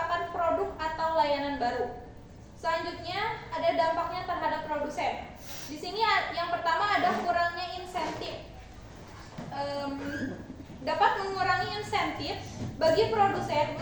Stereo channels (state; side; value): identical; both; correlation 1.00